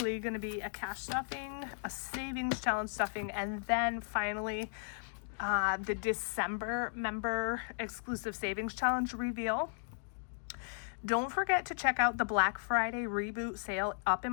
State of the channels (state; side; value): silent; right; digital silence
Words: going to be a cash stuffing, a savings challenge stuffing, and then finally the December member exclusive savings challenge reveal. Don't forget to check out the Black Friday reboot sale up in